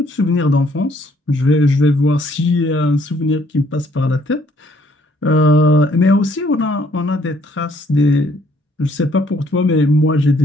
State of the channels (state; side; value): normal; both; correlation 0.65